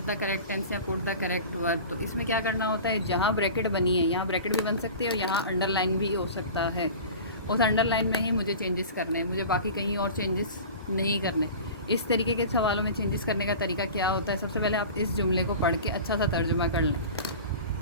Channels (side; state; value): both; inverted; correlation -0.37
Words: द करेक्ट टेंस या पुट द करेक्ट वर्ब, तो इसमें क्या करना होता है, जहाँ ब्रैकेट बनी है यहाँ ब्रैकेट भी बन सकती है और यहाँ अंडरलाइन भी हो सकता है। उस अंडरलाइन में ही मुझे चेंजेस करने हैं, मुझे बाकी कहीं और चेंजेस नहीं करने। इस तरीके के सवालों में चेंजेस करने का तरीका क्या होता है, सबसे पहले आप इस जुमले को पढ़ के अच्छा सा तर्जुमा कर लें।